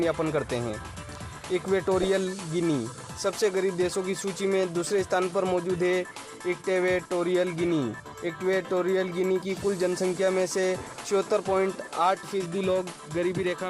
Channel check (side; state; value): both; identical; correlation 1.00